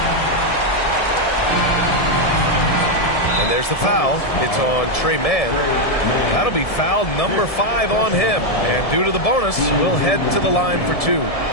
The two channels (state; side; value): late; right; 1.7 ms